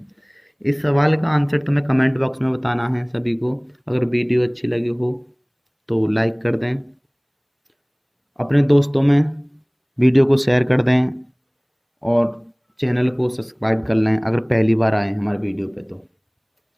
इस सवाल का आंसर तुम्हें कमेंट बॉक्स में बताना है सभी को। अगर वीडियो अच्छी लगी हो तो लाइक कर दें, अपने दोस्तों में वीडियो को शेयर कर दें, और चैनल को सब्सक्राइब कर लें अगर पहली बार आए हमारे वीडियो पे तो।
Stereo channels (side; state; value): both; identical; correlation 1.00